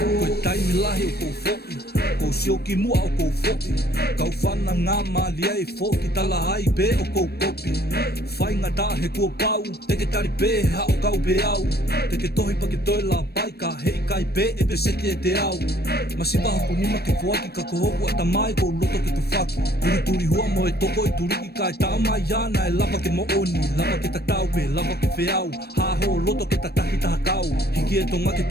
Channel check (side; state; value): right; late; 0.47 ms